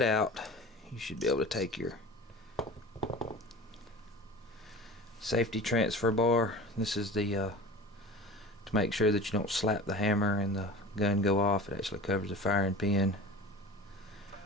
out, you should be able to take your safety transfer bar. This is the to make sure that you don't slap the hammer and the gun go off. It actually covers the firing pin.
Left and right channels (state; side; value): normal; both; correlation 0.35